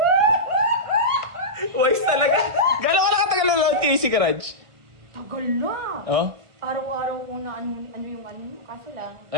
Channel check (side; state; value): left; late; 1.6 ms